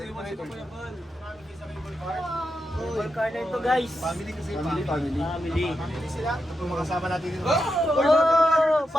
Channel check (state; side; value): normal; both; correlation 0.86